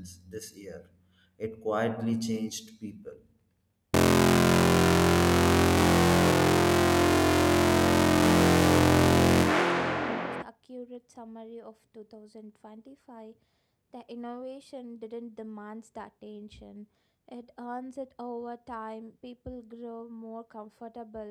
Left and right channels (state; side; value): identical; both; correlation 1.00